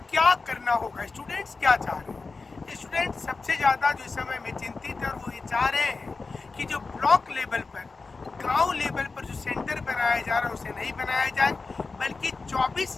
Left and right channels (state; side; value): quieter; right; 4.1 dB